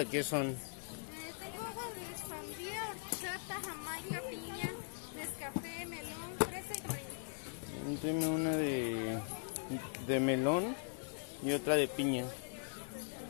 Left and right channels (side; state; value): right; silent; digital silence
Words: qué son? Tengo agua de sandía, horchata, jamaica, piña, nescafé, melón, fresa y vainilla. Deme una de melón y otra de piña.